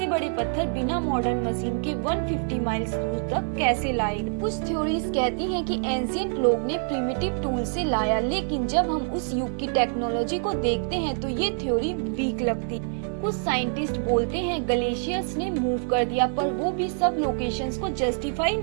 बड़े पत्थर बिना मॉडर्न मशीन के 150 माइल्स दूर तक कैसे लाएगा। कुछ थ्योरीज कहती हैं कि एंशिएंट लोग ने प्रिमिटिव टूल से लाया, लेकिन जब हम उस युग की टेक्नोलॉजी को देखते हैं तो ये थ्योरी वीक लगती। कुछ साइंटिस्ट बोलते हैं ग्लेशियर्स ने मूव कर दिया, पर वो भी सब लोकेशंस को जस्टिफाई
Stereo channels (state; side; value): silent; left; 61 dB below the other